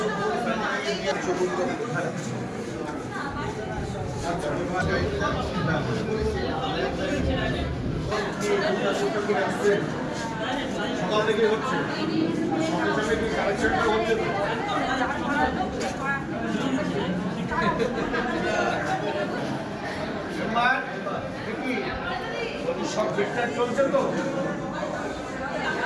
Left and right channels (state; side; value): identical; both; correlation 1.00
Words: সকাল থেকে হচ্ছে, সঙ্গে সঙ্গে কি কালেকশনটা হচ্ছে তো? সব ঠিকঠাক চলছে তো?